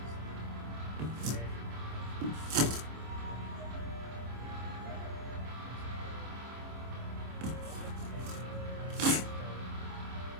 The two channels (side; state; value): left; late; 26 ms